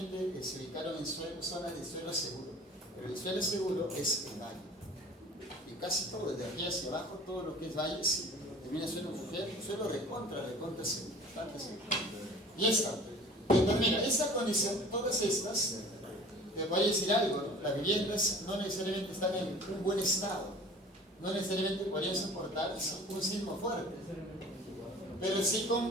se ubicaron en zonas de suelo seguro, pero el suelo seguro es el valle. Y casi todo, desde aquí hacia abajo, todo lo que es valle, sí, termina siendo un suelo recontra seguro, bastante seguro. Y esta, entonces mira, esa condición, todas estas, te voy a decir algo, ¿no? Las viviendas no necesariamente están en un buen estado, no necesariamente podrían soportar un sismo fuerte. Pero si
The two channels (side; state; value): both; normal; correlation 0.45